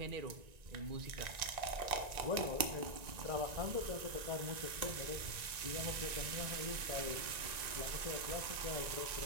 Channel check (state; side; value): late; left; 1.9 ms